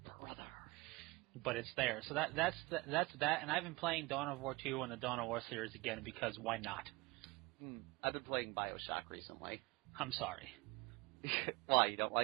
Brother. But it's there. So that's that, and I've been playing Dawn of War 2 and the Dawn of War series again because why not? I've been playing BioShock recently. I'm sorry. Why, you don't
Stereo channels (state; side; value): quieter; left; 24.0 dB